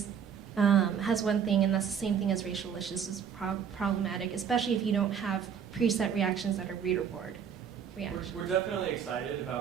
has one thing, and that's the same thing as racialicious is problematic, especially if you don't have preset reactions that are ReadrBoard reactions. We're definitely excited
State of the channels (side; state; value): left; quieter; 7.7 dB